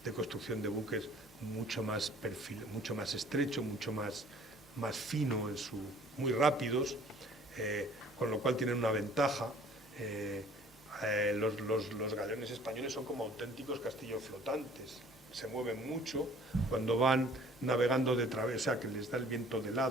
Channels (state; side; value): normal; both; correlation 0.53